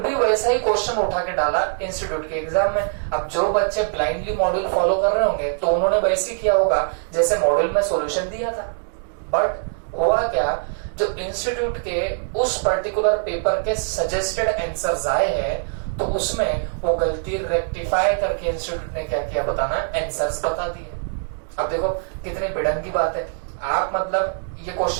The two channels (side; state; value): left; silent; digital silence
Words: वैसा ही क्वेश्चन उठा के डाला इंस्टीट्यूट के एग्जाम में। अब जो बच्चे ब्लाइंडली मॉड्यूल फॉलो कर रहे होंगे तो उन्होंने वैसे ही किया होगा जैसे मॉड्यूल में सॉल्यूशन दिया था। बट हुआ क्या, जो इंस्टीट्यूट के उस पर्टिकुलर पेपर के सजेस्टेड आंसर्स आए हैं, तो उसमें वो गलती रेक्टिफाई करके इंस्टीट्यूट ने क्या किया बताना, आंसर्स बता दिए। अब देखो कितनी भिड़ंग की बात है। आप मतलब ये